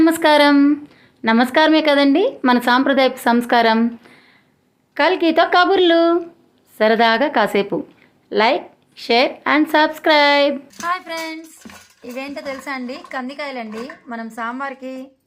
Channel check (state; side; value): identical; both; correlation 1.00